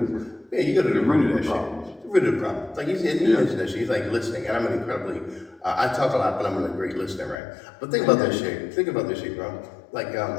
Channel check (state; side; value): drops out; right; at 7.4 s